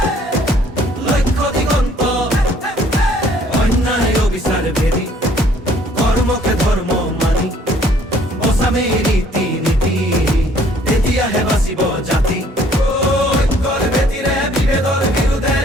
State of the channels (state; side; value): normal; both; correlation 0.60